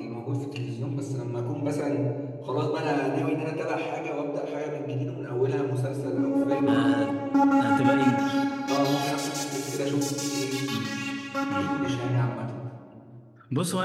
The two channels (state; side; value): identical; both; correlation 1.00